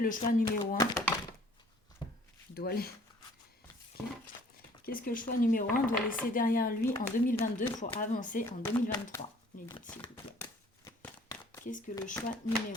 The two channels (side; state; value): both; normal; correlation 0.55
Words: choix numéro 1 doit Qu'est-ce que le choix numéro 1 doit laisser derrière lui en 2022 pour avancer en 2023? Les guides, s'il vous plaît. Qu'est-ce que le choix